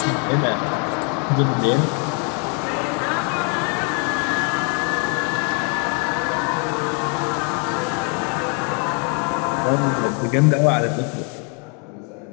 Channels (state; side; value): quieter; right; 33.3 dB